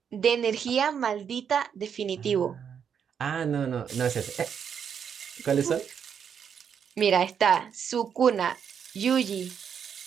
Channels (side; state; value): left; quieter; 7.6 dB